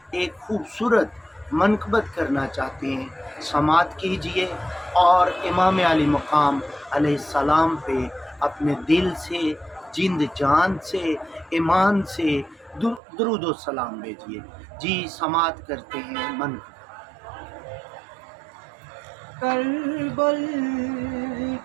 ایک خوبصورت منقبت کرنا چاہتے ہیں، سماعت کیجئے اور امام علی مقام علیہ السلام پہ اپنے دل سے، جند جان سے، ایمان سے درود و سلام بھیجئے۔ جی سماعت کرتے ہیں منقبت۔ کربل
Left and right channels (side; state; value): left; drops out; at 13.0 s